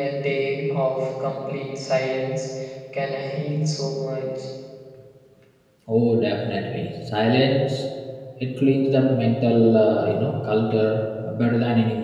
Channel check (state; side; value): identical; both; correlation 1.00